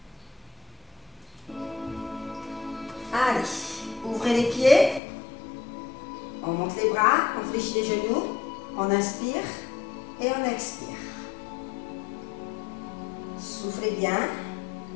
Allez, ouvrez les pieds. On monte les bras, on fléchit les genoux. On inspire et on expire. Soufflez bien.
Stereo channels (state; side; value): drops out; right; at 5.0 s